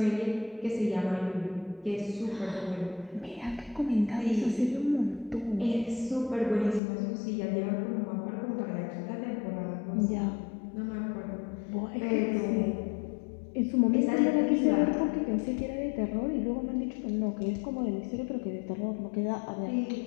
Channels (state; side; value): drops out; right; at 6.8 s